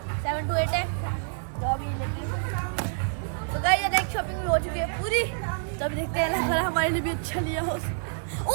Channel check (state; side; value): silent; left; digital silence